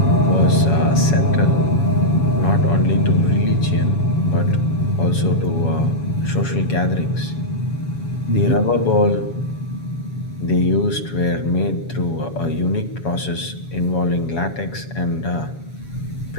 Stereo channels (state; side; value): late; right; 7.2 ms